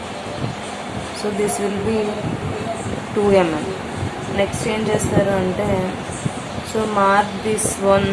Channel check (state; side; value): identical; both; correlation 1.00